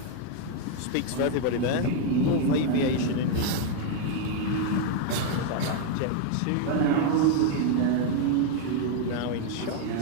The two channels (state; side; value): different; both; correlation 0.00